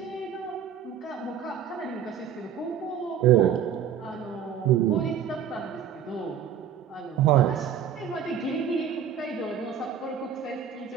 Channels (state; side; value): quieter; left; 8.3 dB